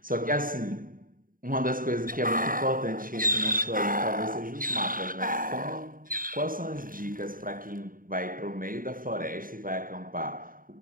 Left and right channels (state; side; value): late; left; 0.40 ms